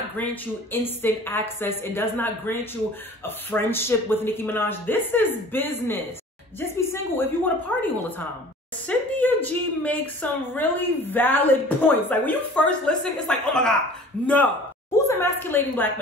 grant you instant access. It does not grant you a friendship with Nicki Minaj. This is business. Just be single if you want to party all the time. Cynthia G makes some really valid points. Like when you first listen, it's like, oh my God, no. Who's emasculating black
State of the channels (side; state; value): both; normal; correlation 0.45